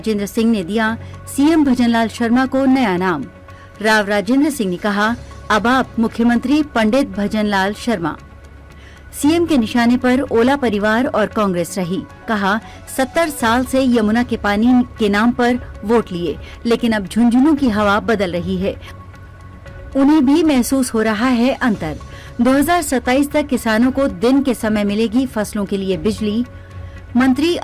सिंह ने दिया सीएम भजनलाल शर्मा को नया नाम। राव राजेंद्र सिंह ने कहा, अब आप मुख्यमंत्री पंडित भजनलाल शर्मा। सीएम के निशाने पर ओला परिवार और कांग्रेस रही। कहा, 70 साल से यमुना के पानी के नाम पर वोट लिए, लेकिन अब झुंझुनू की हवा बदल रही है। उन्हें भी महसूस हो रहा है अंतर। 2027 तक किसानों को दिन के समय मिलेगी फसलों के लिए बिजली। मंत्री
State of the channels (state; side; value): identical; both; correlation 1.00